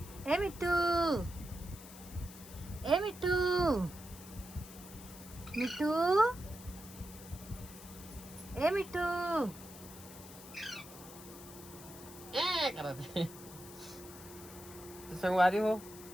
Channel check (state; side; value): noise; left; hiss, 16 dB below the sound